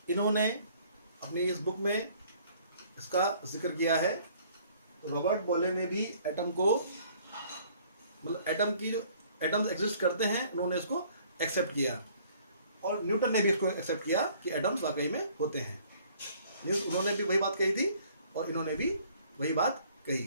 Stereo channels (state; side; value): inverted; both; correlation -0.58